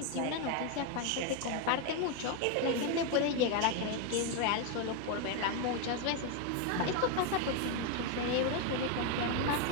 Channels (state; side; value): different; both; correlation 0.01